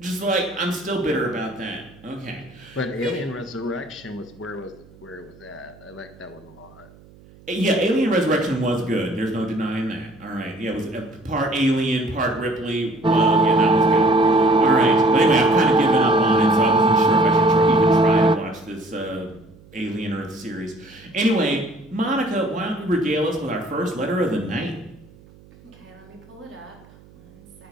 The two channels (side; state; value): right; noise; hum, 25 dB below the sound